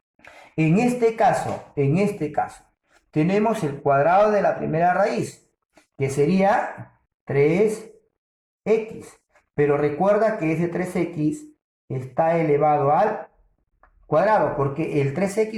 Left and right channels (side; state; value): both; identical; correlation 1.00